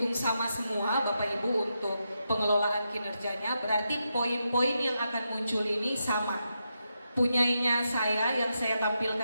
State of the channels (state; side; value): inverted; both; correlation -0.85